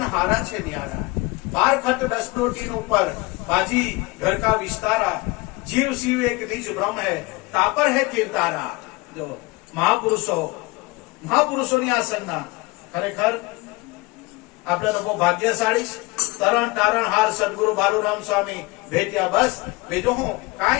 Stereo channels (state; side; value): quieter; right; 23.2 dB